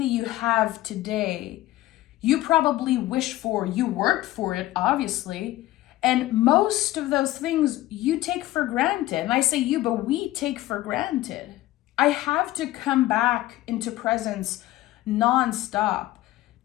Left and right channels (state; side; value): quieter; right; 16.2 dB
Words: you have today, you probably wish for. You worked for it, obviously. And most of those things you take for granted. And I say you, but we take for granted. I have to come back into presence nonstop